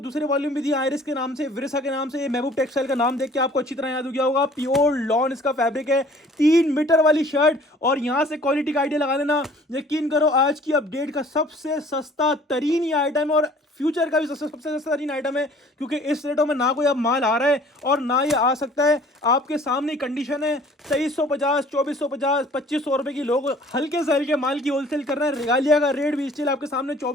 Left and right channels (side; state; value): both; normal; correlation 0.52